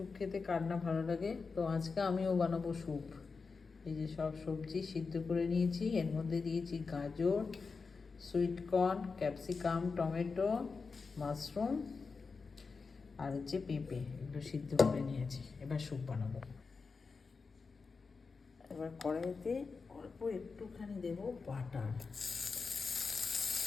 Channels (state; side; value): quieter; right; 4.7 dB